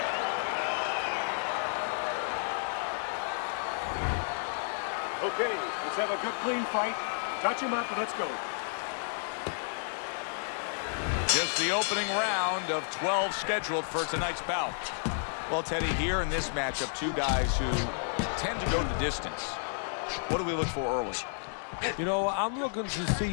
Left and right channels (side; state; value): right; silent; digital silence